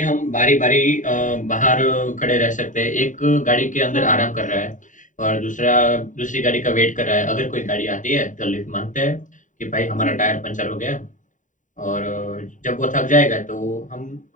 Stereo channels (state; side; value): late; right; 0.37 ms